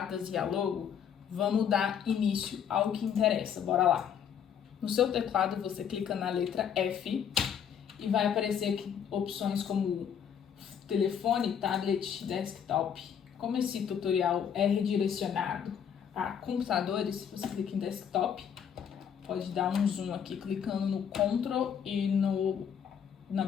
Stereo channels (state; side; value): quieter; right; 8.1 dB